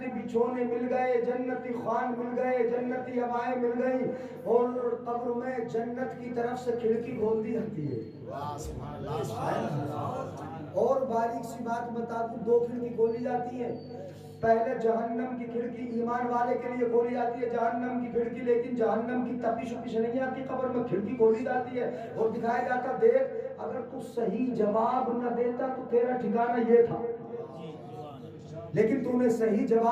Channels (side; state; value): both; identical; correlation 1.00